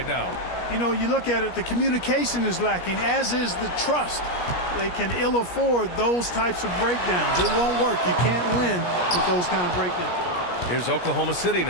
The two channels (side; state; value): right; late; 17 ms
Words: now. You know, you look at it, the communication is lacking, as is the trust. They can ill afford those types of breakdowns. It won't work. You can't win with those kind of breakdowns. Here's Oklahoma City